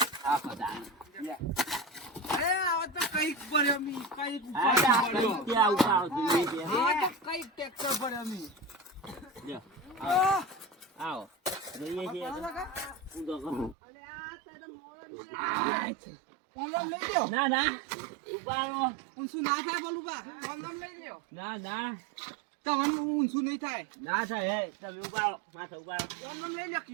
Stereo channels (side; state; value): left; drops out; at 13.8 s